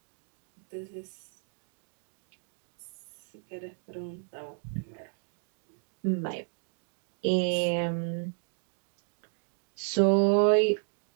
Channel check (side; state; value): left; silent; digital silence